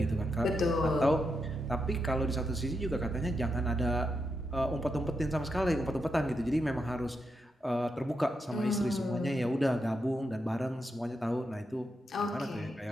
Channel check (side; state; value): both; normal; correlation 0.84